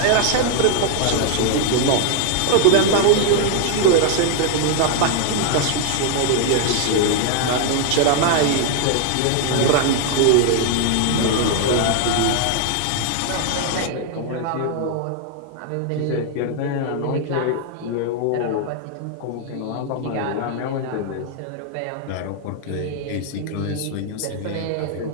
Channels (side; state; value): both; different; correlation 0.00